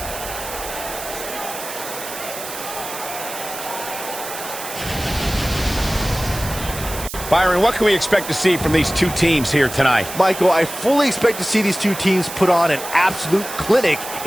Byron, what can we expect to see from these two teams here tonight? Michael, I fully expect to see these two teams put on an absolute clinic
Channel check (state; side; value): noise; right; hiss, 10 dB below the sound